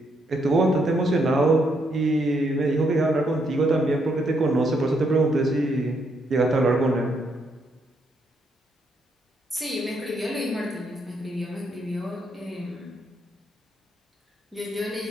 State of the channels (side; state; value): both; normal; correlation 0.75